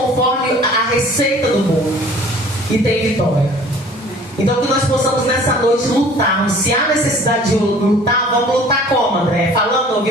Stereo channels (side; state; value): both; normal; correlation 0.50